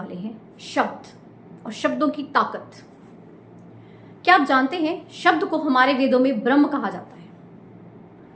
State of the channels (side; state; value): both; identical; correlation 1.00